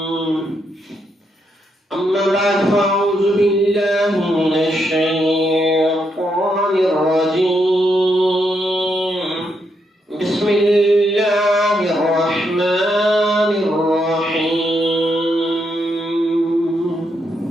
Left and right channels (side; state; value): both; normal; correlation 0.79